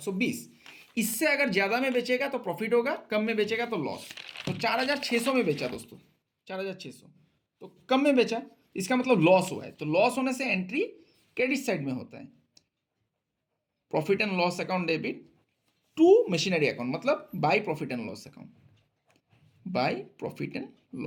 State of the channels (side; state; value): both; identical; correlation 1.00